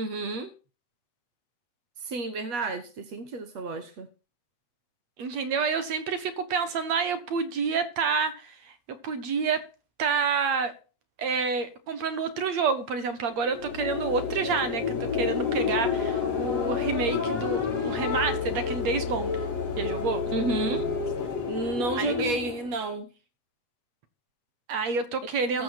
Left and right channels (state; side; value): late; left; 8.6 ms